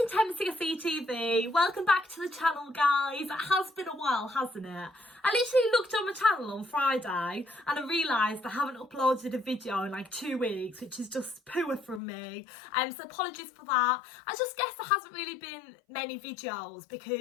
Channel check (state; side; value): drops out; right; at 12.0 s